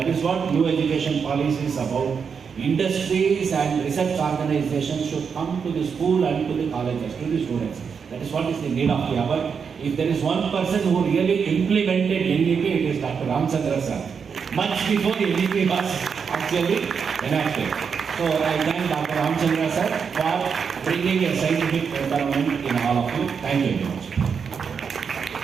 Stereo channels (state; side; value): quieter; left; 6.3 dB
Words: is what new education policy is about. Industries and research organizations should come to the school and to the colleges, to the students. That is what is the need of the hour. If there is one person who really implemented NEP, it is Dr. Ramachandra sir. Much before NEP was actually enacted. So I thank Dr. Ramachandra sir for bringing a scientific development in all of you. Thank you very much.